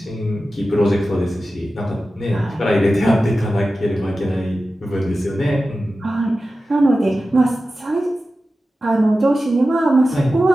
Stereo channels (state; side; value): normal; both; correlation 0.94